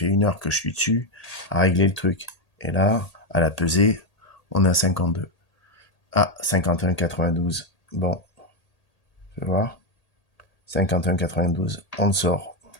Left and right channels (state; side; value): late; right; 1.8 ms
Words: 1 heure que je suis dessus à régler le truc. Et là, à la pesée, on est à 52. Ah, 51,92. Bon, tu vas voir. 51,92. On le sort.